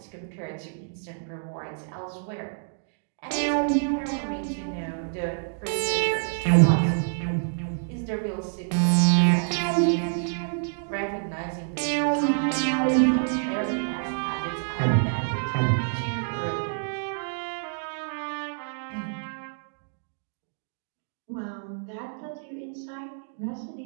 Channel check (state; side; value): silent; left; digital silence